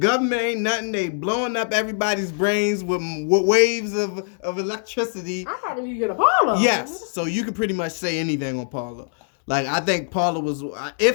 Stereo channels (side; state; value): right; silent; 64 dB below the other